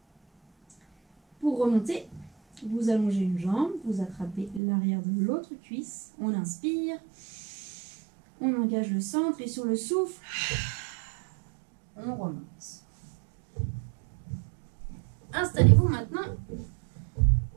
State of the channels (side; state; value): left; drops out; at 4.6 s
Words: Pour remonter, vous allongez une jambe, vous attrapez l'arrière de l'autre cuisse, on inspire, on engage le centre et sur le souffle, on remonte. Installez-vous maintenant